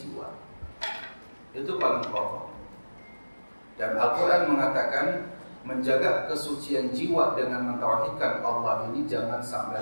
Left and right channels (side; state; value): both; inverted; correlation -1.00